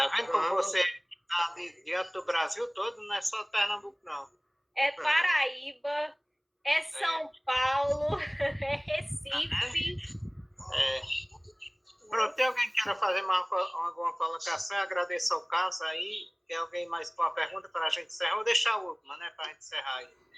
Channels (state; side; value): identical; both; correlation 1.00